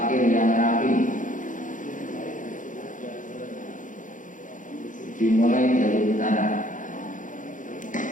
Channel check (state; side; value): late; right; 0.38 ms